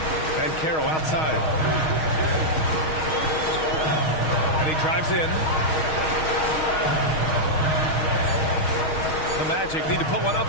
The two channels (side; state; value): right; late; 6.4 ms